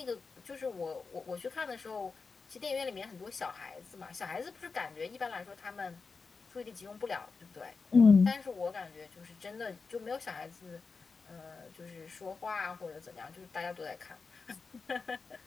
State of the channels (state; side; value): quieter; right; 4.6 dB